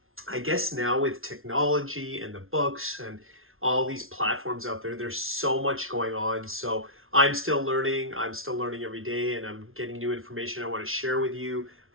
I guess now with technology and the books and all these platforms out there, there's so much going on. So I'm still learning. I'm still learning every day, and I'm getting new information I want to share with you,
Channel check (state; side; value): late; left; 0.61 ms